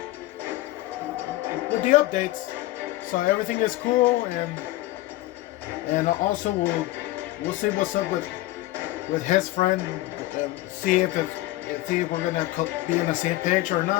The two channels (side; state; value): right; quieter; 17.5 dB